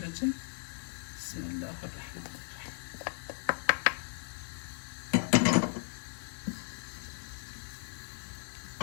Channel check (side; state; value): right; silent; digital silence